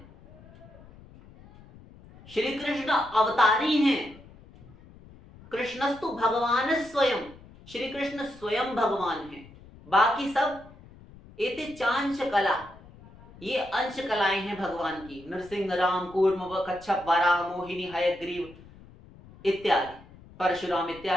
श्री कृष्ण अवतारी हैं। कृष्णस्तु भगवान स्वयं, श्री कृष्ण स्वयं भगवान हैं। बाकी सब एते चांश कला, ये अंश कलाएं हैं भगवान की। नरसिंह, राम, कूर्म, कच्छप, वराह, मोहिनी, हयग्रीव इत्यादि, परशुराम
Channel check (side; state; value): left; noise; rumble, 22 dB below the sound